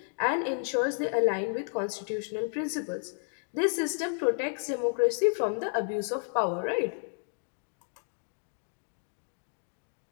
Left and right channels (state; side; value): silent; right; digital silence